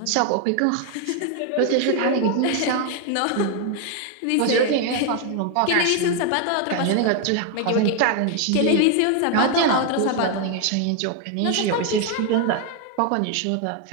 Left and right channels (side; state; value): both; different; correlation 0.01